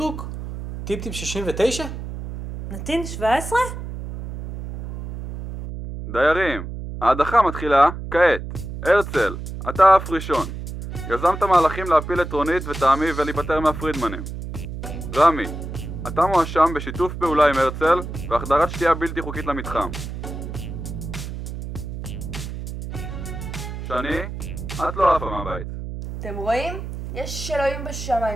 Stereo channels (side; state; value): right; noise; hum, 8 dB below the sound